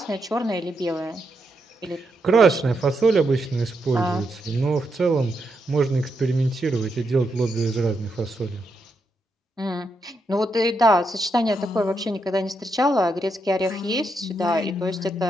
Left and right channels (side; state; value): both; normal; correlation 0.82